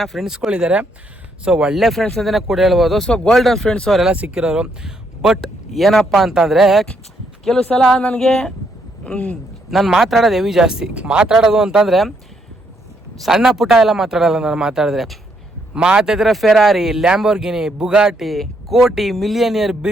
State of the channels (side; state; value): both; normal; correlation 0.74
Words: ಫ್ರೆಂಡ್ಸ್ಗಳಿದ್ದಾರೆ. ಸೊ ಒಳ್ಳೆ ಫ್ರೆಂಡ್ಸ್ ಅಂತಲೇ ಕೂಡ ಹೇಳ್ಬೋದು. ಸೊ ಗೋಲ್ಡನ್ ಫ್ರೆಂಡ್ಸ್ ಅವರೆಲ್ಲ ಸಿಕ್ಕಿರೋರು. ಬಟ್ ಏನಪ್ಪ ಅಂತಂದರೆ ಕೆಲವು ಸಲ ನನಗೆ ನಾನು ಮಾತಾಡೋದು ಹೆವಿ ಜಾಸ್ತಿ. ಮಾತಾಡೋದು ಅಂತಂದರೆ ಸಣ್ಣ ಪುಟ್ಟ ಎಲ್ಲ ಮಾತಾಡೋಲ್ಲ. ನಾನು ಮಾತಾಡಿದ್ರೆ ಫೆರಾರಿ, ಲ್ಯಾಂಬೋರ್ಗಿನಿ, ಬುಗಾಟಿ, ಕೋಟಿ, ಮಿಲಿಯನಿಯರ್,